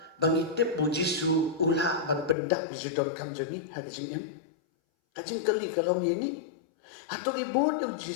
bangitip bo Jisu ula ban pendak bijudon kam joni hagajing yam kajing kali kalau ni hato ni bod yu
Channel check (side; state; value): right; drops out; at 2.4 s